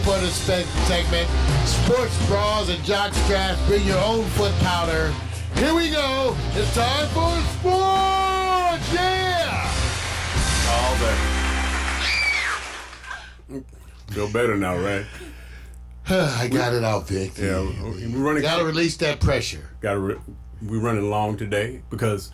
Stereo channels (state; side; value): identical; both; correlation 1.00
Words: this segment. Sports bras and jock straps. Bring your own foot powder. Here we go. It's time for sports. Yeah. All that. Feel better now, right? I got it out, Vic. Yeah, we're running. Gotta release that pressure. We're running long today because